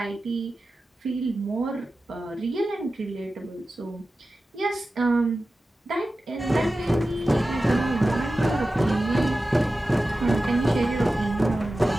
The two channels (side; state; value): both; normal; correlation 0.94